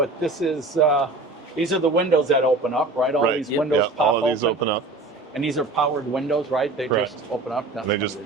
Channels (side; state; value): left; quieter; 3.2 dB